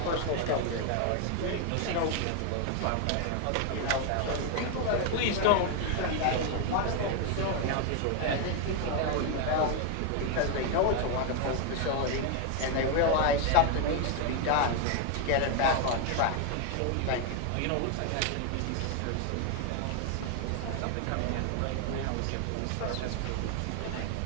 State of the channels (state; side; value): different; both; correlation 0.01